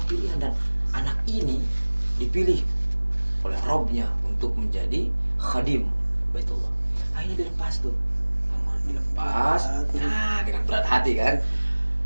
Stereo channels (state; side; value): inverted; both; correlation -1.00